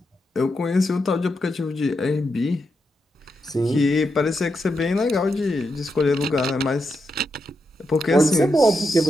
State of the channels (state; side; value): normal; both; correlation 0.85